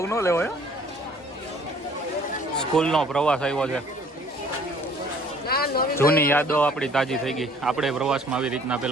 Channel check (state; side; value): normal; both; correlation 0.55